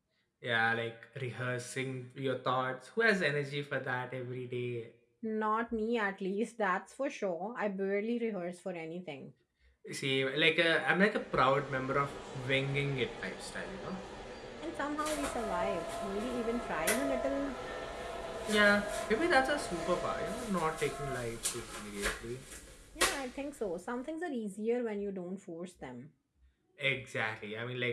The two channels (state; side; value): identical; both; correlation 1.00